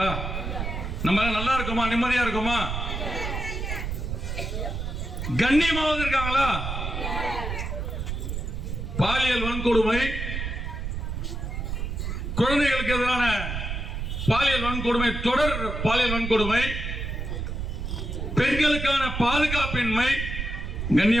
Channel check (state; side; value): noise; right; rumble, 4 dB below the sound